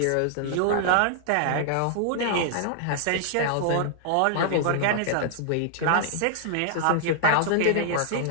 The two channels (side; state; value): both; different; correlation 0.00